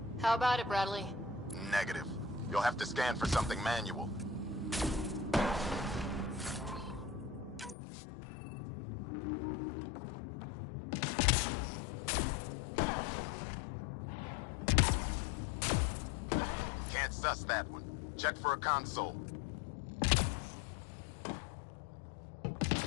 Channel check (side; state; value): right; drops out; at 7.8 s